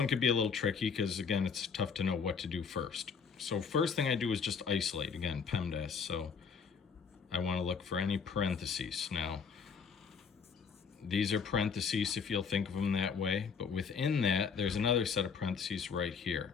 could be a little tricky because again, it's tough to know what to do first. So first thing I do is just isolate, again, PEMDAS. So I want to look for any parentheses. Now, these are parentheses if you'll think of them that way, but within that, there's another set of parentheses right here.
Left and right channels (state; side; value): quieter; right; 6.0 dB